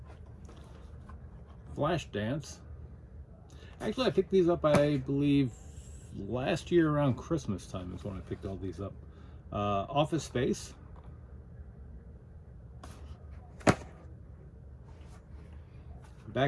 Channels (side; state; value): both; identical; correlation 1.00